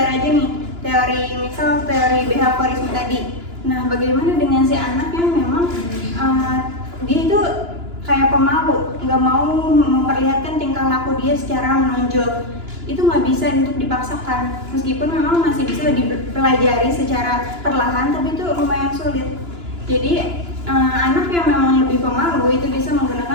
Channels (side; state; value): left; late; 2.9 ms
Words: aja nih, misal teori behaviorisme tadi. Nah, bagaimana dengan si anak yang memang dia itu kayak pemalu, nggak mau memperlihatkan tingkah laku dia secara menonjol. Itu nggak bisa untuk dipaksakan, meskipun memang masih bisa dipelajari secara perlahan, tapi itu lumayan sulit. Jadi anak yang memang lebih pemalu itu bisa